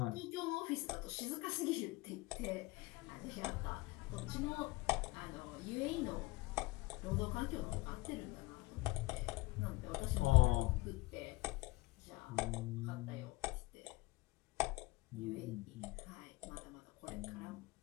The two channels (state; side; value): quieter; right; 21.6 dB